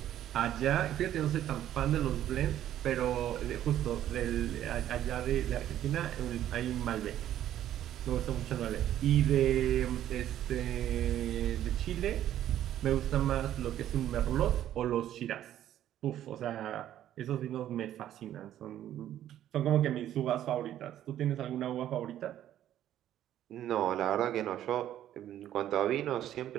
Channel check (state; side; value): quieter; left; 11.8 dB